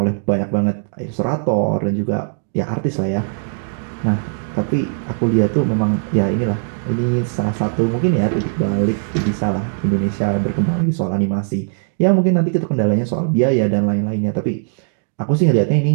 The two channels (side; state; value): left; silent; digital silence